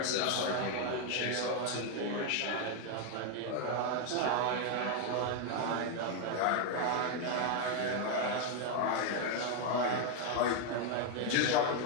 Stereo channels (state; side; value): different; both; correlation 0.01